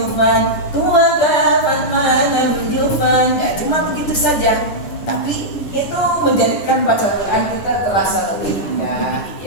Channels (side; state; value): right; late; 10 ms